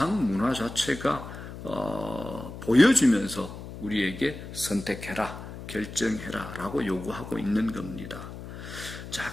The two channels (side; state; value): left; noise; hum, 11 dB below the sound